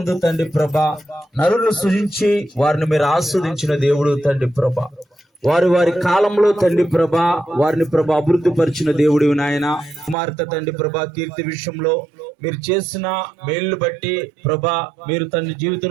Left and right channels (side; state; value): left; drops out; at 10.2 s